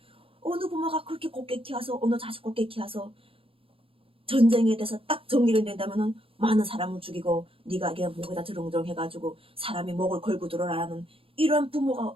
어느 부모가 그렇게 곱게 키워서 어느 자식 곱게 키워서 전쟁에 대해서 딱 정리를 낸다면은 많은 사람을 죽이고 네가 그냥 목에다 드렁드렁 해가지고 사람이 목을 걸고 들어라는 이런 부모가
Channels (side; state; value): left; late; 0.27 ms